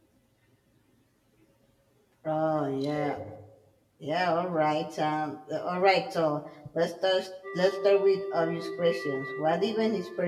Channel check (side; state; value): both; identical; correlation 1.00